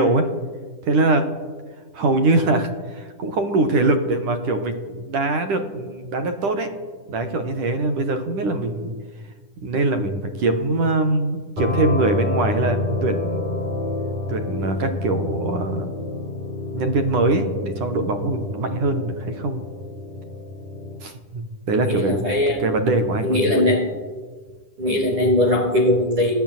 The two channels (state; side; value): late; left; 10 ms